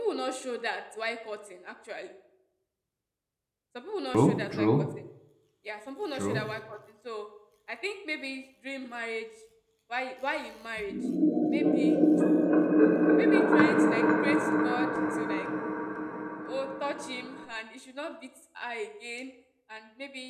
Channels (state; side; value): identical; both; correlation 1.00